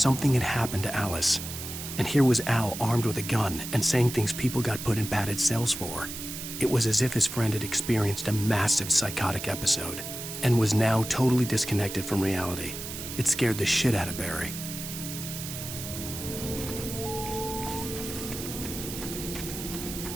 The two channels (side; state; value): right; noise; hiss, 8 dB below the sound